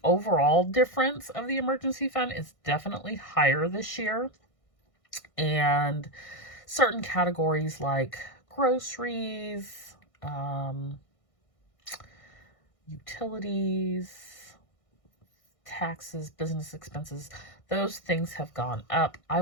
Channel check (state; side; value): late; right; 1.6 ms